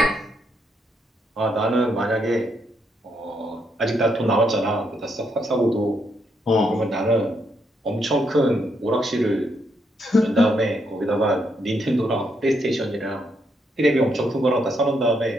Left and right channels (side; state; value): both; normal; correlation 0.77